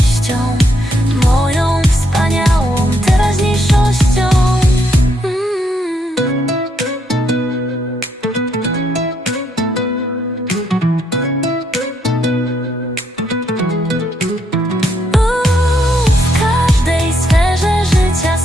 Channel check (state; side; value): normal; both; correlation 0.74